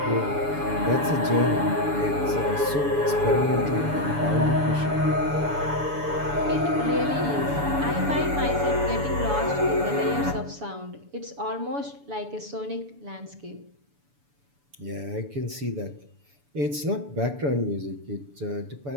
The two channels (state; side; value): late; left; 7.0 ms